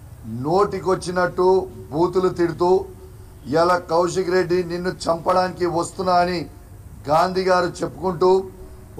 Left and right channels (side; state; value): both; identical; correlation 1.00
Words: నోటికొచ్చినట్టు బూతులు తిడుతూ ఇలా కౌశిక్ రెడ్డి నిన్ను చంపడానికి వస్తున్నా అని గాంధీ గారు చెప్పుకుంటూ